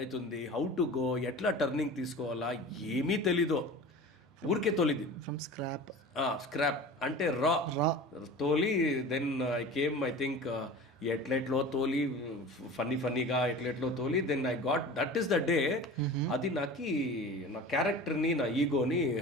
హౌ టు గో, ఎట్లా టర్నింగ్ తీసుకోవాలా ఏమీ తెలీదు. ఊరికే తోలిది ఫ్రమ్ స్క్రాప్. స్క్రాప్ అంటే రా తోలి. Then I came, I think ఎట్లెట్లో తోలి, ఫన్నీగా ఎట్లెట్లో తోలి. Then I got, that is the day. అది నాకు నా క్యారెక్టర్ని, నా ఈగోని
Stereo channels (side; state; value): both; normal; correlation 0.37